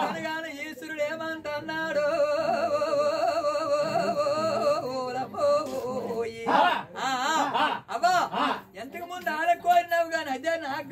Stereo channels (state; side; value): identical; both; correlation 1.00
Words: ఈశ్వరుడు ఏమంటున్నాడు అబ్బా ఎంతకు ముందు ఆడ కోరినావు గాని అదే నాకు